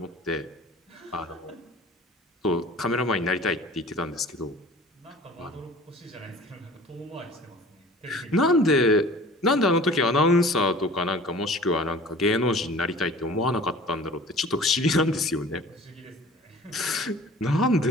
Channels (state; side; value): normal; both; correlation 0.45